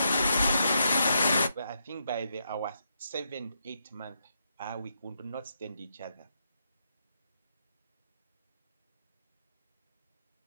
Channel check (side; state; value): both; inverted; correlation -0.81